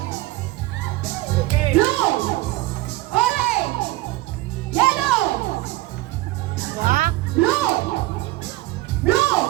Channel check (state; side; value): quieter; left; 18.6 dB